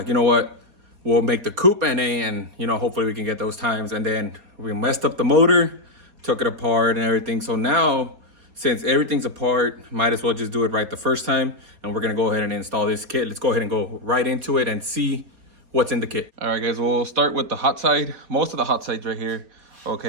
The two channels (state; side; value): late; left; 4.0 ms